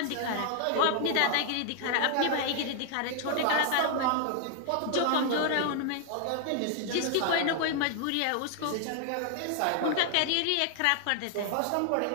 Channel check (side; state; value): both; different; correlation 0.00